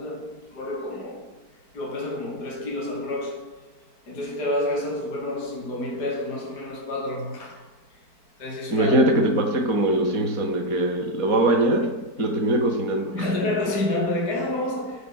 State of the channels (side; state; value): right; late; 4.5 ms